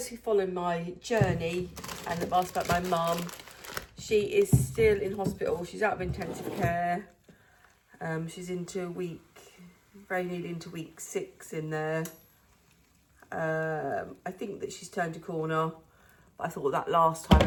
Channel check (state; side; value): identical; both; correlation 1.00